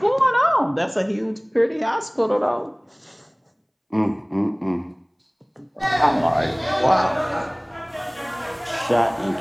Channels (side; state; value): both; identical; correlation 1.00